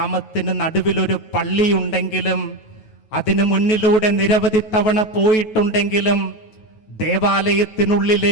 നടുവിലൊരു പള്ളിയുണ്ടെങ്കിലും അതിനു മുന്നിലൂടെ നിരവധി തവണ പോയിട്ടുണ്ടെങ്കിലും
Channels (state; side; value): late; right; 9.2 ms